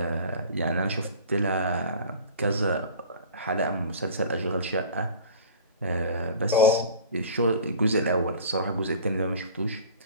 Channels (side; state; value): both; inverted; correlation -0.41